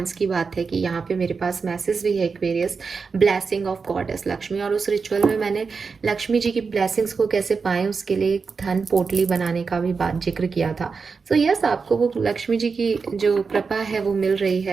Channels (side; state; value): left; quieter; 5.0 dB